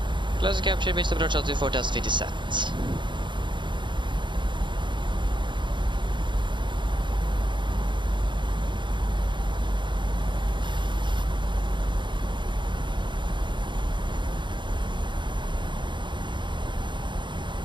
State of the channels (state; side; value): late; left; 0.23 ms